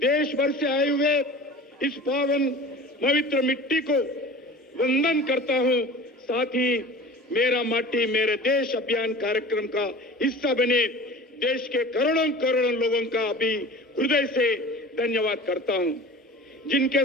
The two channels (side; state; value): both; normal; correlation 0.39